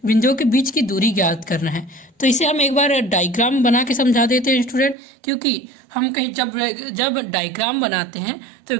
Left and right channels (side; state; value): left; drops out; at 5.0 s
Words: के बीच की दूरी ज्ञात करना है। तो इसे हम एक बार डायग्राम बना के समझा देते हैं स्टूडेंट, क्योंकि हम कहीं जब डायग्राम बनाते हैं तो